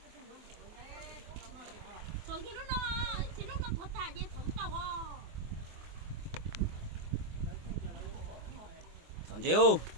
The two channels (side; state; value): left; late; 24 ms